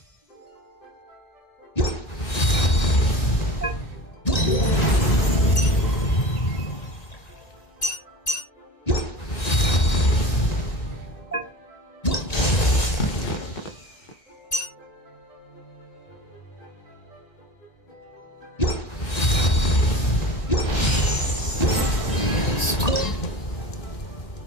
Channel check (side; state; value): right; late; 1.9 ms